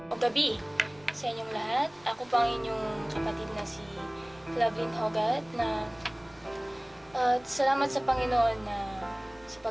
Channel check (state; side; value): noise; right; rumble, 28 dB below the sound